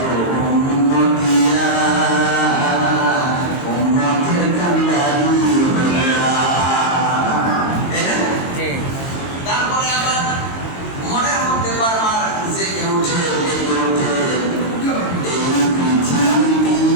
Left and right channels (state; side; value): late; right; 22 ms